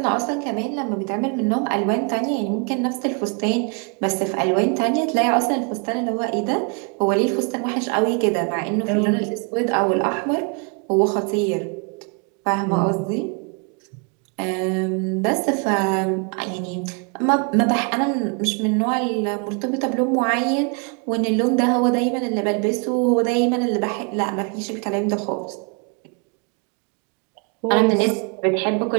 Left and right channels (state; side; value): quieter; left; 36.0 dB